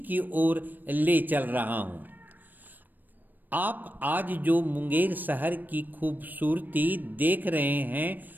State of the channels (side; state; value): left; late; 0.090 ms